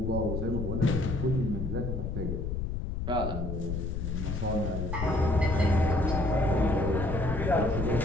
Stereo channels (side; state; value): left; noise; rumble, 3 dB below the sound